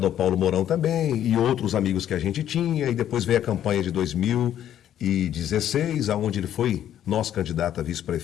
ao Paulo Mourão também, e outros amigos que a gente tinha, e depois veio a campanha de 2016, aonde ele foi nosso candidato a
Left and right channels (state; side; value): quieter; right; 10.8 dB